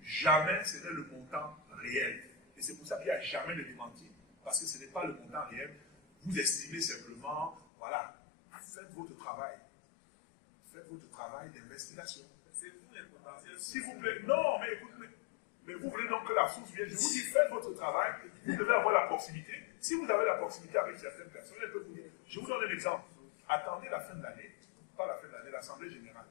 jamais ce n'est le montant réel. Et c'est pour ça qu'il n'y a jamais de démenti, parce que ce n'est pas le montant réel. Vous estimez simplement, voilà, faites votre travail. Faites votre travail d'investigation. C'est vous les potentiels. S'il vous plaît, non, mais écoutez, mais vous voulez donc que la source vienne. Je vous dis, faites votre travail, vous devez avoir la proximité. Si vous avez la proximité avec certaines personnes, elles peuvent vous dire. Je vous donne un exemple. Attendez la fin de l'année, pas la fin de l'année, l'Assemblée générale.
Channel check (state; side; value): drops out; right; at 7.7 s